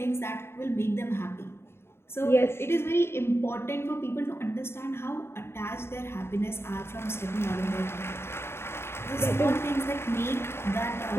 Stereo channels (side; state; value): right; late; 0.12 ms